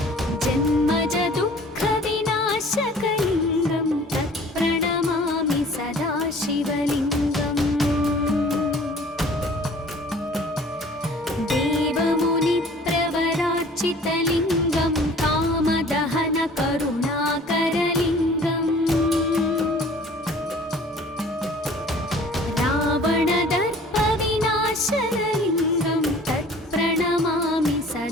जन्मजदुःखविनाशकलिङ्गं तत्प्रणमामि सदा शिवलिङ्गम् देवमुनिप्रवरार्चितलिङ्गं कामदहनकरुणाकरलिङ्गम् रावणदर्पविनाशनलिङ्गं तत्प्रणमामि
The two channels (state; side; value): normal; both; correlation 0.50